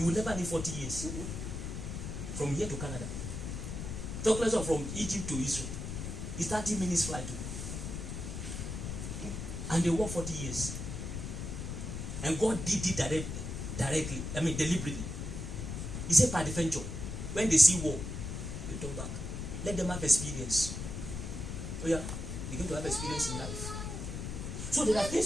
will never need 40 years. From here to Canada. Talk less of from Egypt to Israel. It's 30 minutes flight. And they work 40 years. And God did it directly. I mean, deliberately. He said, by the venture, when they see war, they turn back. Let them have experience. Oh yeah, they're going to have experience in life. So there are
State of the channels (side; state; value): left; noise; rumble, 5 dB below the sound